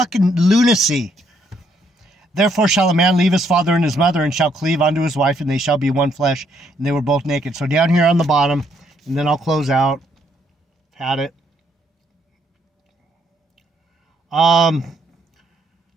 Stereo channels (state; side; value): normal; both; correlation 0.71